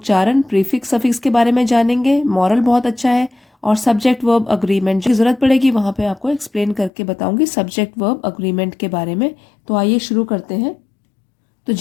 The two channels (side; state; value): right; drops out; at 6.9 s